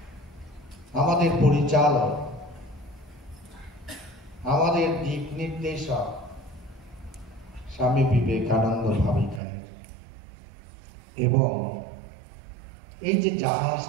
আমাদের পরিচালক, আমাদের দিক নির্দেশক স্বামী বিবেকানন্দ ভাবিকানের। এবং এই যে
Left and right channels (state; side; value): drops out; left; at 9.4 s